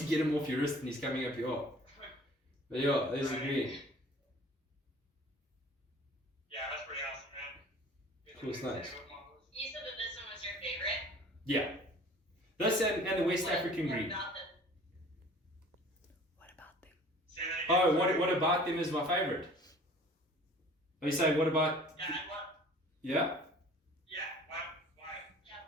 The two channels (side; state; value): both; normal; correlation 0.47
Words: get him off your wrist and he's coming up your arm. But yeah, there's the green. Yeah, that's pretty awesome, man. Cool snakes. You said that this one was your favorite? Yeah. This and the West African green. What about them? Oh, what about them is my favorite? Oh, you say what about? Yeah.